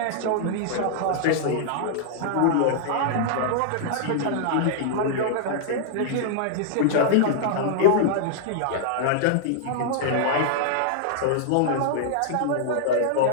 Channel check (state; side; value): different; both; correlation -0.01